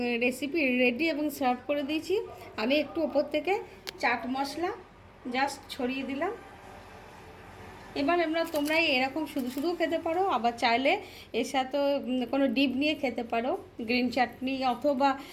রেসিপি রেডি এবং সার্ভ করে দিয়েছি। আমি একটু ওপর থেকে চাট মশলা জাস্ট ছড়িয়ে দিলাম। এবার তোমরা এরকম শুধু শুধুও খেতে পারো, আবার চাইলে এর সাথে কোনো ডিপ নিয়ে খেতে পারো, গ্রিন চাটনি অথবা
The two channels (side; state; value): both; identical; correlation 1.00